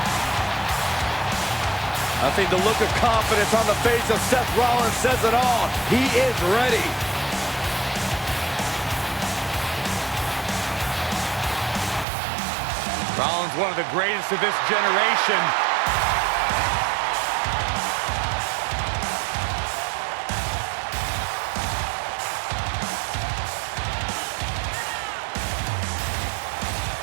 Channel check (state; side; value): drops out; left; at 12.1 s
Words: I think the look of confidence on the face of Seth Rollins says it all. He is ready. Rollins, one of the greatest of this generation.